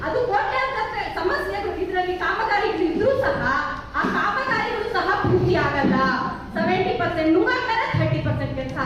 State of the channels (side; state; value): both; identical; correlation 1.00